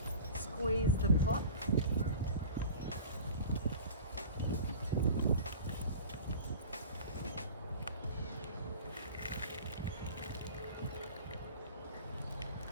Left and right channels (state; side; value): inverted; both; correlation -0.38